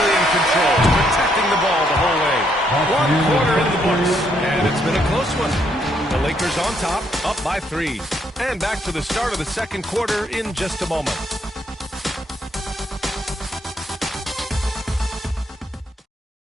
in control, protecting the ball the whole way. 1 quarter in the books, and it's been a close one. The Lakers on top, up by 3. And back to the start of the second quarter in just a moment.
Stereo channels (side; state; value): both; normal; correlation 0.73